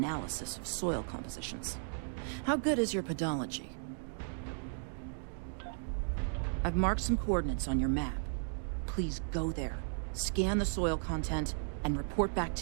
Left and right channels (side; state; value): left; silent; digital silence